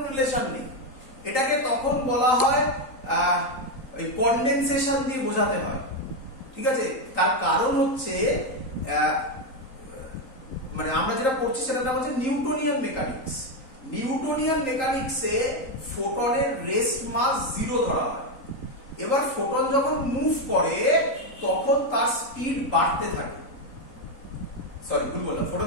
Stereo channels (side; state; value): right; late; 3.8 ms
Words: রিলেশন নেই। এটাকে তখন বলা হয় ওই কনডেনসেশন দিয়ে বোঝাতে হয়, ঠিক আছে? তার কারণ হচ্ছে মানে আমরা যেটা পড়ছি সেটার নাম হচ্ছে নিউটনিয়ান মেকানিক্স। নিউটনিয়ান মেকানিক্সে ফোটনের রেস্ট মাস 0 ধরা হয়। এবার ফোটন যখন মুভ করে তখন তার স্পিড বাড়তে থাকে, সরি ভুল বললাম, ফোটন